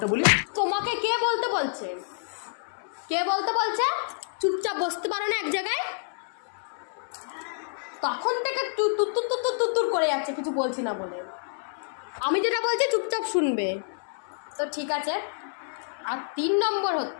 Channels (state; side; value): silent; right; 59 dB below the other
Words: বলি। তোমাকে কে বলতে বলছে? কে বলতে বলছে? চুপচাপ বসতে পারো না এক জায়গায়? তখন থেকে তুর করে যাচ্ছে, কিছু বলছি না বলে। আমি যেটা বলছি চুপচাপ শুনবে, তো ঠিক আছে। আর 3 নম্বর